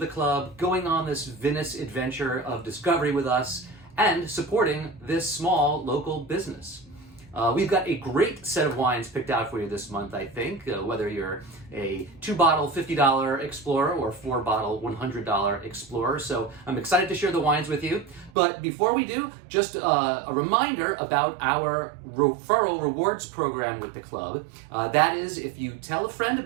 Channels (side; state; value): left; drops out; at 18.3 s